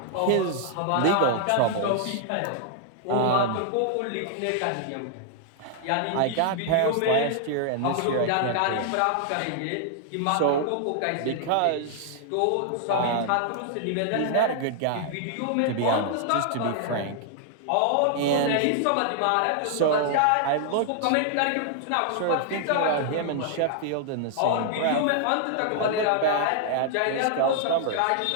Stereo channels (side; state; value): both; different; correlation 0.00